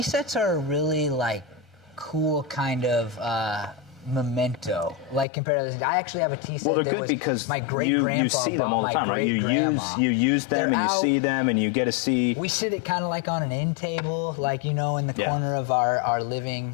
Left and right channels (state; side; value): drops out; right; at 5.2 s